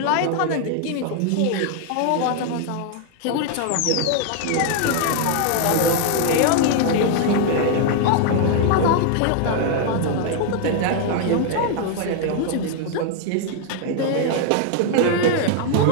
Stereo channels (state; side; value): different; both; correlation 0.00